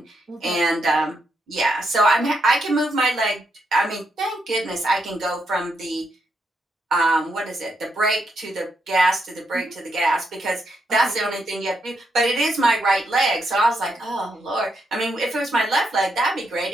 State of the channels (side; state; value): both; normal; correlation 0.80